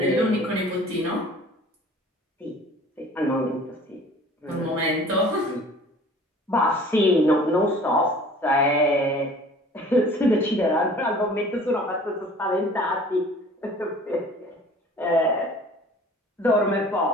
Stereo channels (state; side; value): normal; both; correlation 0.48